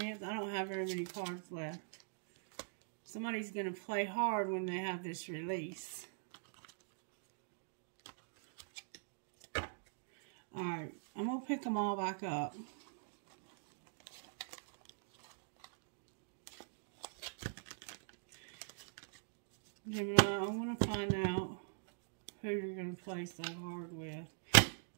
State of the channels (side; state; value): left; silent; digital silence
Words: I don't have very many cards left. Somebody's going to play hard when they have this release. Alright. I'm going to pick them all back up. Gemini, I want to find out who you're going to play so hard with.